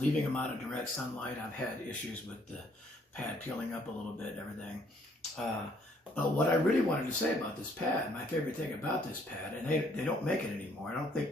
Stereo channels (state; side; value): normal; both; correlation 0.65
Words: them out of direct sunlight. I've had issues with the pad peeling up a little bit and everything. But what I really wanted to say about this pad, my favorite thing about this pad, and they don't make it anymore. I don't think